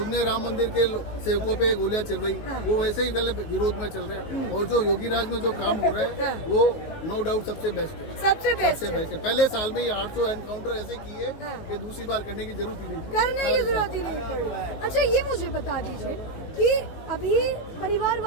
ने राम मंदिर के सेवकों पे गोलियां चल रही, वो वैसे ही पहले विरोध में चल रहे हैं। और जो योगी राज में जो काम हो रहा है वो नो डाउट सबसे बेस्ट है, सबसे बेस्ट है। पहले साल में ही 800 एनकाउंटर ऐसे किए कि दूसरी बार करने की जरूरत ही नहीं पड़ी। अच्छा, ये मुझे बता दीजिए, कि अभी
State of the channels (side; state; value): right; late; 19 ms